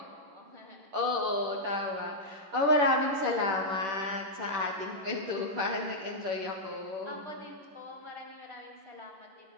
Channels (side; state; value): left; late; 10 ms